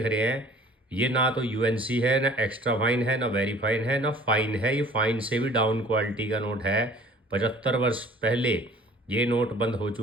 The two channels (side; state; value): both; normal; correlation 0.50